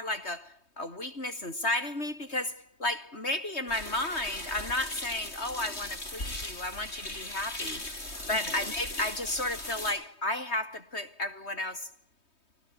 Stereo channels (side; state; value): right; late; 3.2 ms